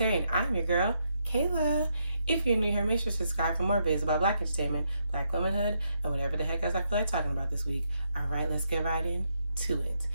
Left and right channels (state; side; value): inverted; both; correlation -0.78